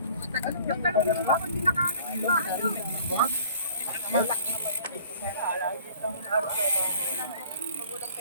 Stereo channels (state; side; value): inverted; both; correlation -0.51